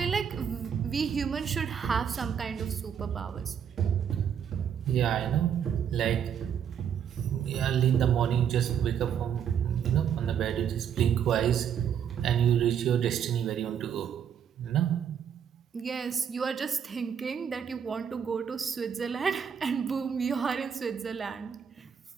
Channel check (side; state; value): left; quieter; 8.2 dB